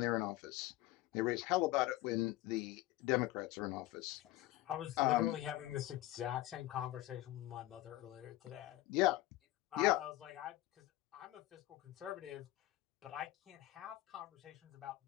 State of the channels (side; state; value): right; quieter; 16.5 dB